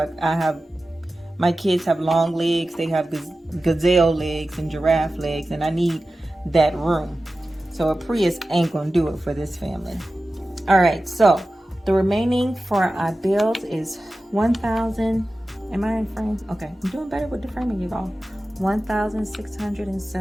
My kids have long legs, they have gazelle legs and giraffe legs, and I need that room. So a Prius ain't gonna do it for this family. All right, so the remaining for our bills is $1,000. Am I in frame? Okay, I'm doing better with the framing, you all.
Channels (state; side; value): normal; both; correlation 0.95